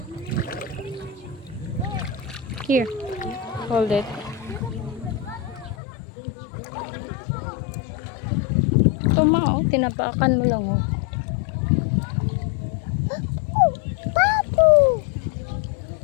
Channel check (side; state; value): right; drops out; at 5.8 s